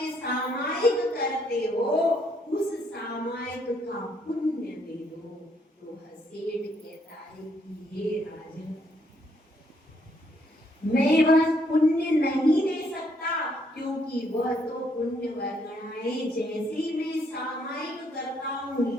सामायिक करते हो उस सामायिक का पुण्य दे दो। तो सेठ कहता है कि हे राजन, मैं वह पुण्य नहीं दे सकता, क्योंकि वह तो पुण्य वर्गणाएं जैसे मैं सामायिक करता हूँ,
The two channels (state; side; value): normal; both; correlation 0.71